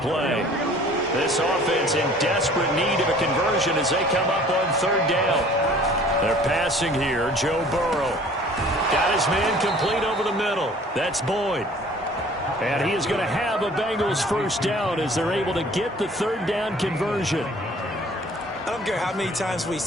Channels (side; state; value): both; normal; correlation 0.51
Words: This offense in desperate need of a conversion as they come up on third down. They're passing here. Joe Burrow got his man complete over the middle. That's Boyd. And he is going to have a Bengals first down as they're able to get the third down conversion. I don't care how many times we